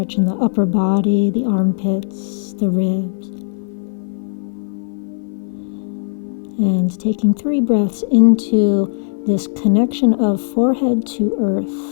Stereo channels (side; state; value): right; silent; 59 dB below the other